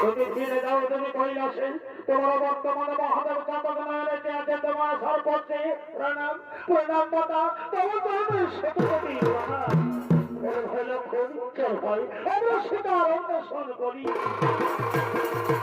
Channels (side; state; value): both; identical; correlation 1.00